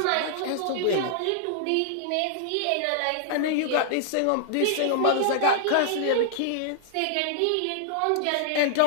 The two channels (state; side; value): different; both; correlation -0.01